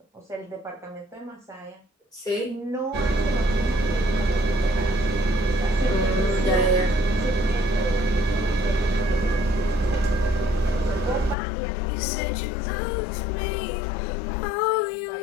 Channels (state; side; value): drops out; right; at 11.4 s